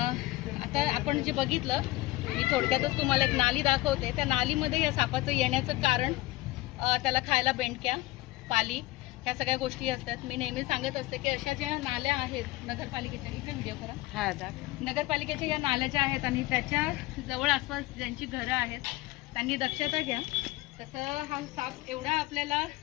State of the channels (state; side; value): quieter; right; 18.8 dB